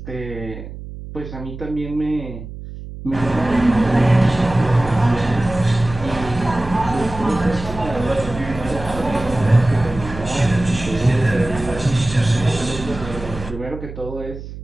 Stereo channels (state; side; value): noise; right; hum, 12 dB below the sound